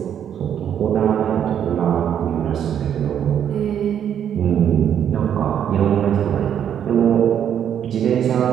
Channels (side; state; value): left; quieter; 9.2 dB